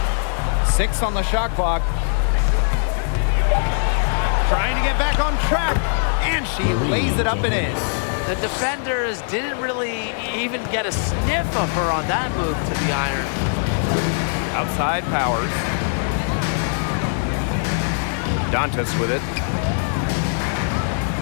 6 on the shot clock. Trying to get back on track, and she lays it up and in. The defenders didn't really even get a sniff of her on that move to the iron. Outside Powers. Dantas with it.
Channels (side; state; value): right; silent; digital silence